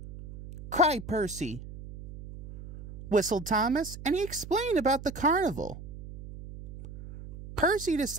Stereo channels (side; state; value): right; noise; hum, 13 dB below the sound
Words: Cried Percy. Whistled Thomas, and he explained about the carnival. Percy